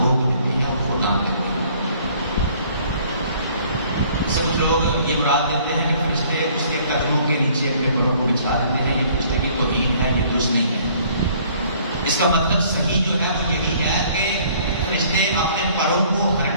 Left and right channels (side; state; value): both; inverted; correlation -0.57